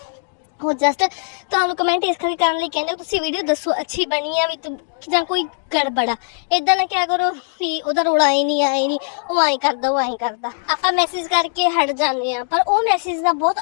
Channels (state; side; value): silent; right; digital silence